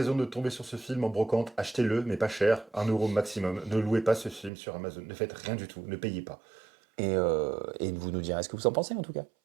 de tomber sur ce film en brocante, achetez-le, mais pas cher, 1 € maximum. Ne louez pas ce film sur Amazon. Ne faites rien du tout. Ne payez pas. Et vous nous direz ce que vous en pensez en tout cas.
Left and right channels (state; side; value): drops out; left; at 4.5 s